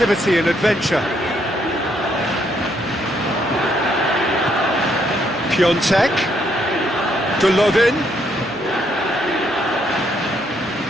and adventure. Piontek, Golovin.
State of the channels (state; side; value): normal; both; correlation 0.72